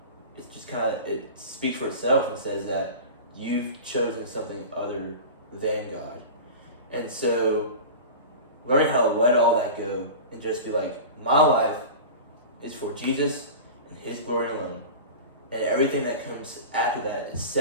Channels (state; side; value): inverted; both; correlation -0.32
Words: just kind of, it speaks for itself and says that you've chosen something other than God. And so learning how to let all that go and just be like, my life is for Jesus and His glory alone, and everything that comes after that is